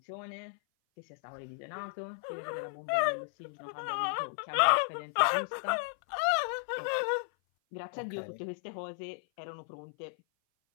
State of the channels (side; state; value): right; silent; 55 dB below the other